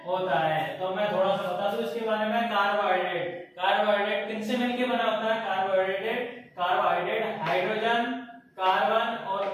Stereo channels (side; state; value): both; identical; correlation 1.00